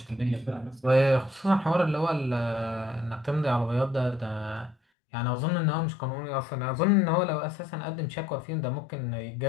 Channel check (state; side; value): drops out; right; at 4.8 s